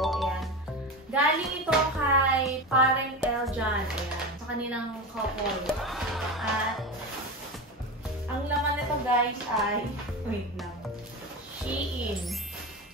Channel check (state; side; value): normal; both; correlation 0.23